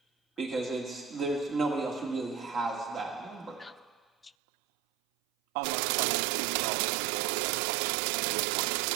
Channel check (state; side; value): drops out; left; at 4.3 s